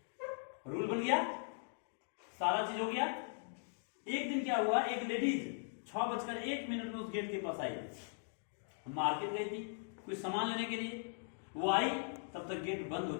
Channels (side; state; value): right; silent; digital silence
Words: रूल बन गया। सारा चीज हो गया। एक दिन क्या हुआ, एक लेडीज 6:01 में उस गेट के पास आई, मार्केट गई थी कुछ सामान लेने के लिए। वो आई तब तक गेट बंद हो